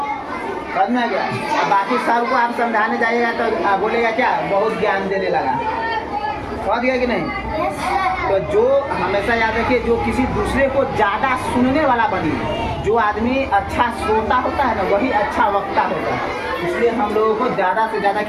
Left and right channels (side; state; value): both; identical; correlation 1.00